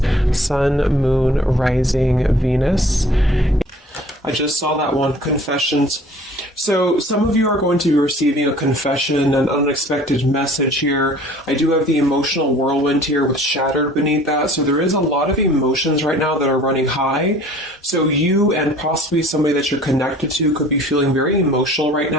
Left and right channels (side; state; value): both; normal; correlation 0.50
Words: Sun, Moon, Rising, Venus. I just saw that one, confessions. So some of you are going to be receiving a confession, an unexpected message here. I do have the emotional whirlwind here with shattered beneath that. So there is a lot of emotions right now that are running high. So you and possibly somebody that you're connected to could be feeling very emotional right